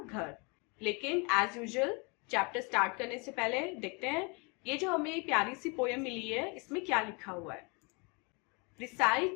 लेकिन एज यूजुअल चैप्टर स्टार्ट करने से पहले देखते हैं ये जो हमें प्यारी सी पोयम मिली है इसमें क्या लिखा हुआ है।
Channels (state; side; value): quieter; right; 31.4 dB